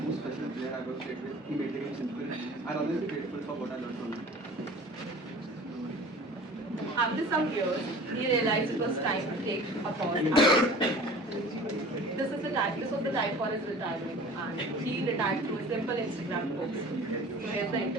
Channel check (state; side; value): normal; both; correlation 0.43